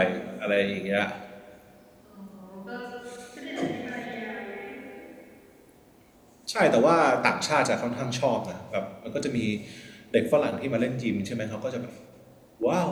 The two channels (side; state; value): both; identical; correlation 1.00